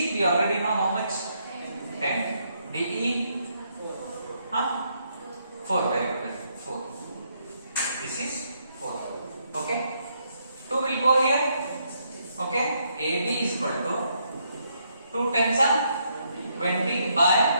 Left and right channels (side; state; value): both; inverted; correlation -0.75